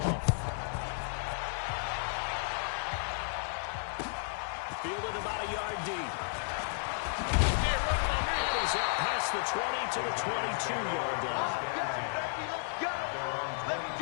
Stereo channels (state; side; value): silent; right; 56 dB below the other